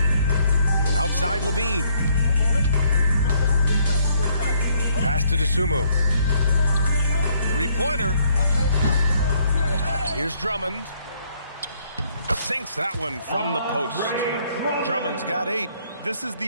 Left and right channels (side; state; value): both; inverted; correlation -0.67